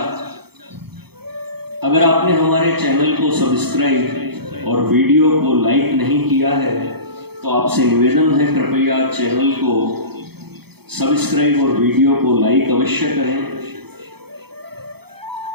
अगर आपने हमारे चैनल को सब्सक्राइब और वीडियो को लाइक नहीं किया है तो आपसे निवेदन है, कृपया चैनल को सब्सक्राइब और वीडियो को लाइक अवश्य करें।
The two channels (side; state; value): left; late; 0.97 ms